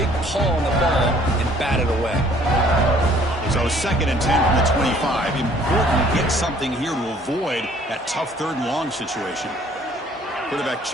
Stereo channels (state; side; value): normal; both; correlation 0.58